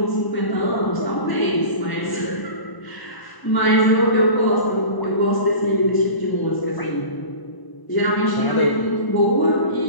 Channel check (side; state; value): right; late; 1.0 ms